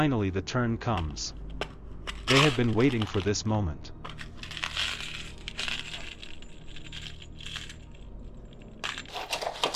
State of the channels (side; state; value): both; identical; correlation 1.00